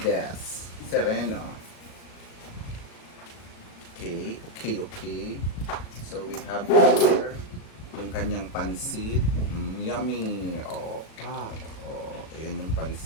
Sereno. Okay. So, we have here yung kanyang pansit. Yummy! Ayan yung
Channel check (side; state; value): right; late; 37 ms